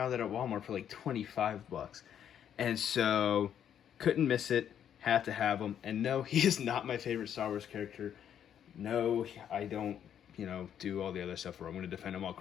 it at Walmart for like 25 bucks. And so couldn't miss it, had to have him. And no, he is not my favorite Star Wars character. No, I don't, do all the other stuff where I'm going to defend him all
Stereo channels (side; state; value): right; quieter; 9.3 dB